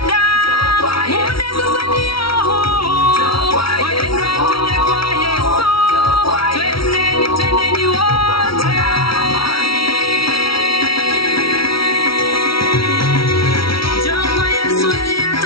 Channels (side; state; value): right; late; 0.75 ms